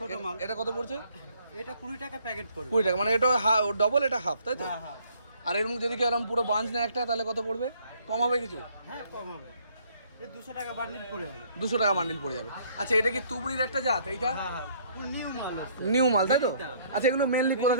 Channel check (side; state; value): both; inverted; correlation -0.63